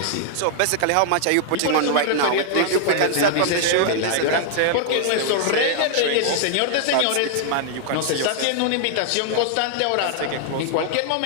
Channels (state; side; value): different; both; correlation -0.01